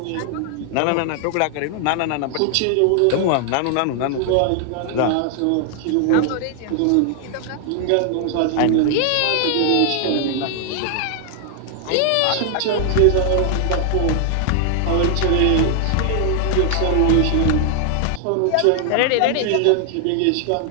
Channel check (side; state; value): both; different; correlation 0.00